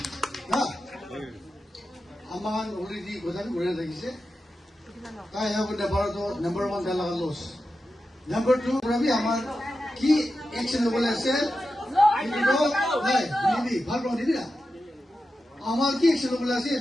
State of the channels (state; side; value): normal; both; correlation 0.91